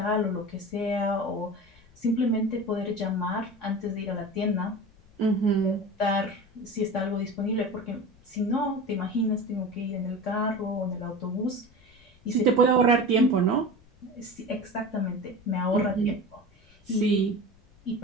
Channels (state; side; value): noise; left; rumble, 28 dB below the sound